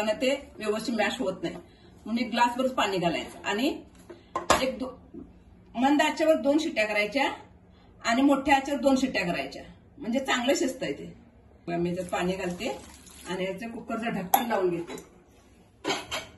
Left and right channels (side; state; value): both; identical; correlation 1.00